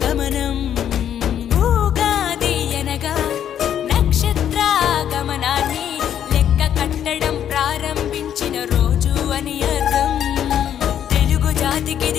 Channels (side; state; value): right; quieter; 9.8 dB